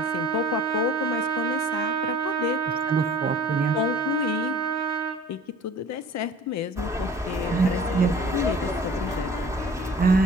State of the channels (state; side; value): normal; both; correlation 0.46